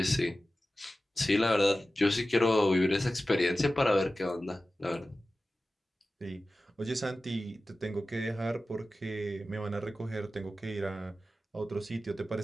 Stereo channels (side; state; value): both; normal; correlation 0.95